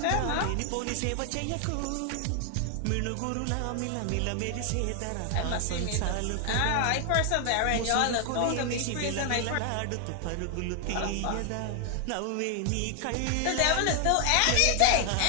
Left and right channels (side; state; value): both; different; correlation 0.00